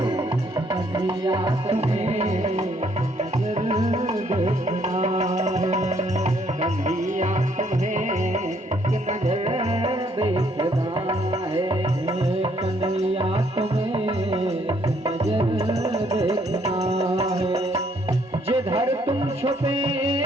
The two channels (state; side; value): normal; both; correlation 0.67